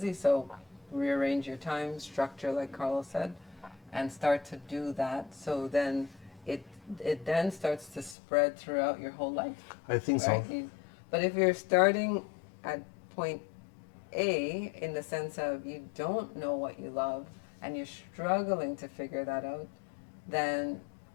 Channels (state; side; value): drops out; right; at 8.2 s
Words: So, rearrange your time structure, like Carlos said, and start to do that. So then it then starts to spread throughout your whole life. I think right? So. But if you're starting at point A, in the sense of you don't know what you love and you're struggling to figure that out, then